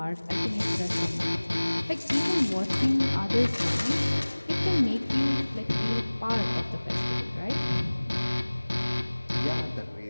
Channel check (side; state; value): both; inverted; correlation -1.00